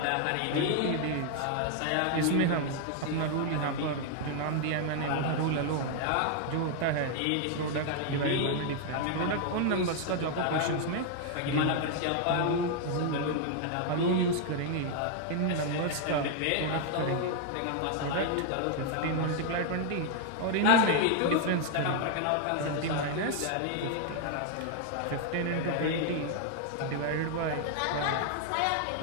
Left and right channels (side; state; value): both; different; correlation 0.00